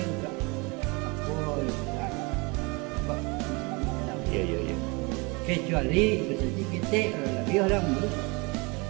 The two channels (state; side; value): quieter; left; 28.0 dB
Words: Iya, iya, iya. Kecuali seperti kita lebih orang dulu.